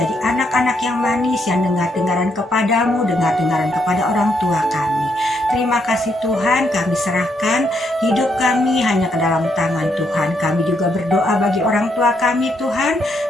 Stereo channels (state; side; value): normal; both; correlation 0.76